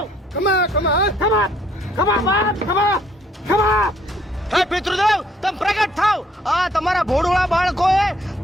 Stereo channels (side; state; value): both; normal; correlation 0.65